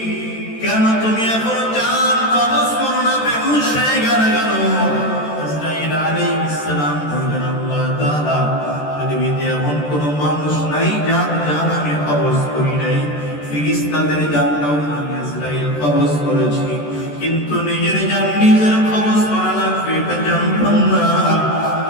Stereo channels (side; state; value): right; late; 14 ms